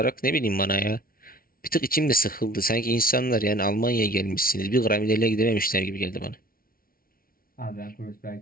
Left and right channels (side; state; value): right; late; 0.43 ms